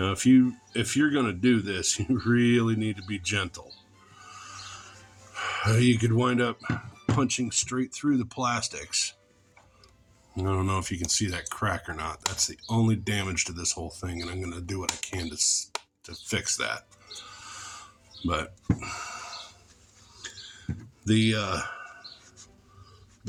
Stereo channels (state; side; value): identical; both; correlation 1.00